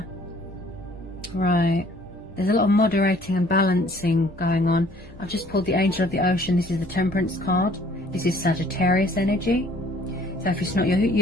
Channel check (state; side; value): noise; right; rumble, 23 dB below the sound